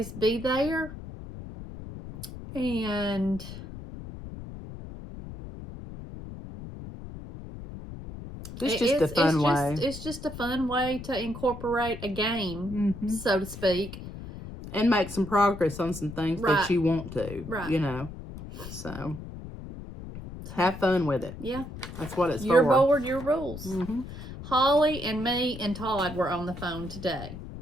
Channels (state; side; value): noise; left; rumble, 11 dB below the sound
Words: be there. And it's just a fun way. It's just a fun way to incorporate a game, so to speak. And make some progress on some things that you want to, you know. So, have fun with it. Yeah. That's what it's for. Your board, your rules. Holly and me and Todd were on the phone today.